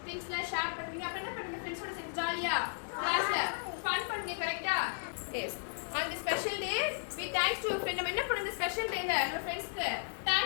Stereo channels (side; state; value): right; silent; digital silence